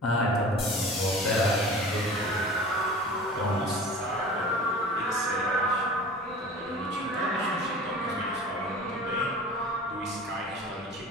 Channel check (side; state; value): both; normal; correlation 0.39